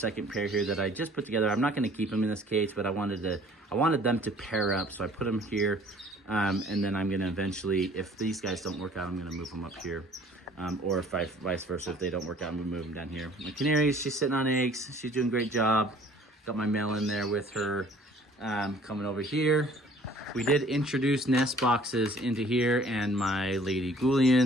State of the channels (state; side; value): normal; both; correlation 0.54